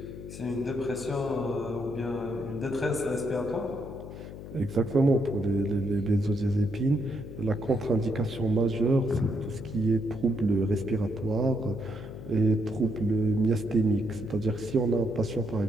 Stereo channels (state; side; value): noise; left; hum, 12 dB below the sound